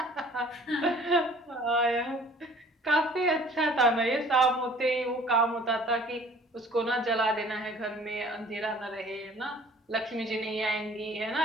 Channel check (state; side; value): normal; both; correlation 0.51